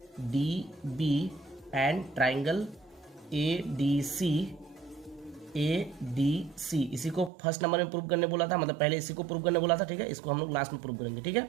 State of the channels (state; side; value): drops out; left; at 7.3 s